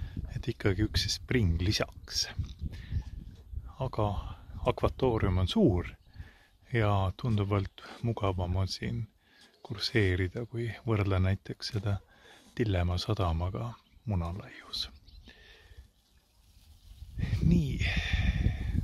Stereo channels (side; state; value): both; identical; correlation 1.00